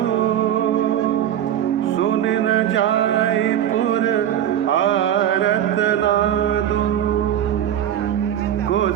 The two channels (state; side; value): quieter; left; 10.6 dB